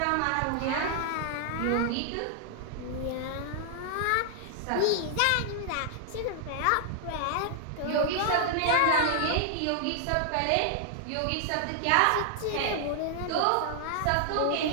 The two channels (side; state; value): both; different; correlation 0.00